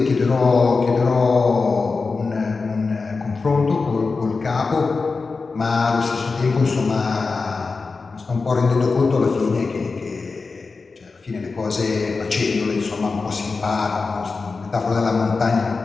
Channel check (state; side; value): quieter; right; 4.3 dB